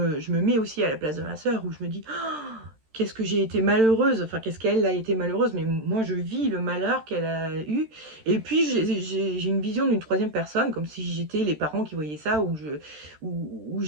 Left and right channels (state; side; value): late; left; 13 ms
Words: mets aussi à la place de ma sœur où je me dis qu'est-ce que j'ai été malheureuse, enfin qu'est-ce qu'elle a été malheureuse, mais moi je vis le malheur qu'elle a eu. Et puis j'ai une vision d'une troisième personne, comme si j'étais les parents qui voyaient ça, où